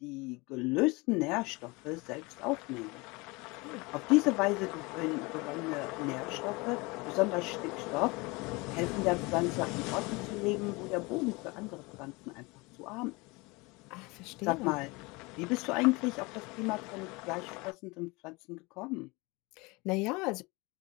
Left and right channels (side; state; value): right; quieter; 25.4 dB